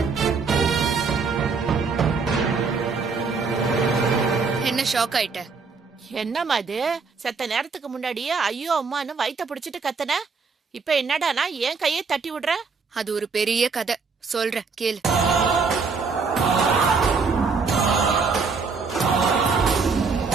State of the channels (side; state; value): left; quieter; 4.9 dB